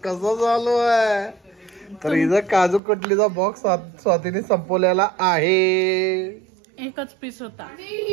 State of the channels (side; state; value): left; drops out; at 2.8 s